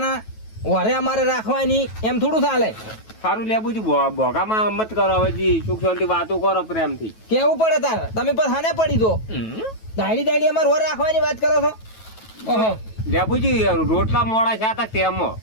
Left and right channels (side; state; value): right; late; 9.2 ms